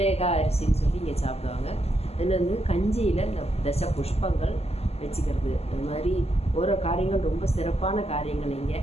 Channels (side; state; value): right; late; 0.30 ms